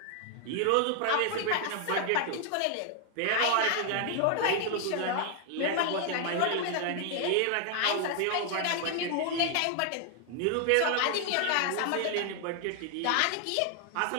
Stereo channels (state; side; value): different; both; correlation 0.00